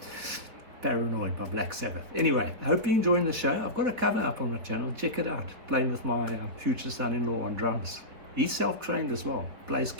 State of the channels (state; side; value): late; left; 4.1 ms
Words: Paranoid by Black Sabbath. Anyway, I hope you're enjoying the show. I've got a cover up on my channel. Check it out. Playing with my future son-in-law on drums. He's self-trained as well. Plays